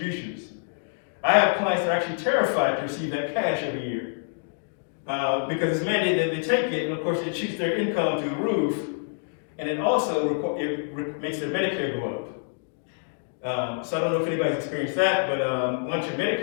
I have clients that are actually terrified to receive that cash every year because it's mandated that they take it, and of course it shoots their income through the roof, and it also makes their Medicare go up. So I don't know if anybody's experienced that, but once your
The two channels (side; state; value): right; silent; digital silence